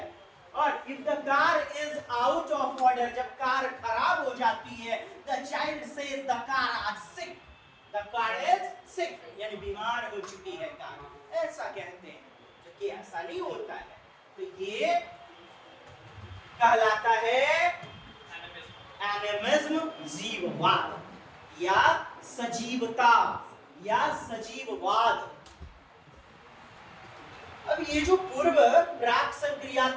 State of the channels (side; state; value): both; identical; correlation 1.00